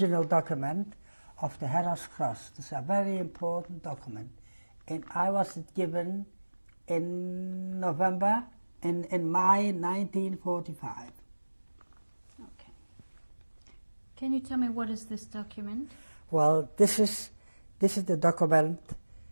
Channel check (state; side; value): inverted; both; correlation -1.00